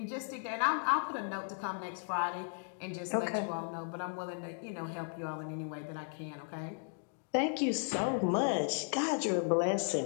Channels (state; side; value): silent; right; 54 dB below the other